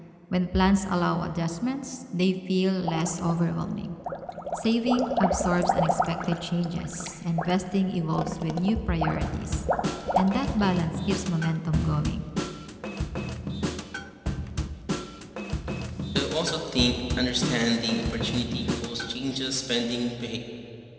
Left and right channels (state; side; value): identical; both; correlation 1.00